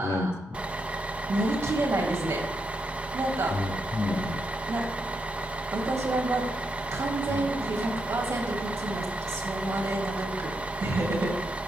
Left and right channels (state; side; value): normal; both; correlation 0.82